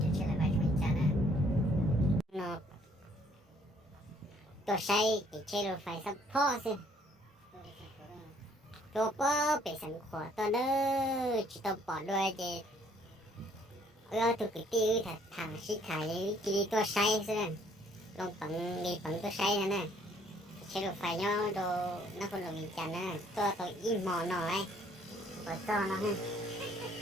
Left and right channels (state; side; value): normal; both; correlation 0.63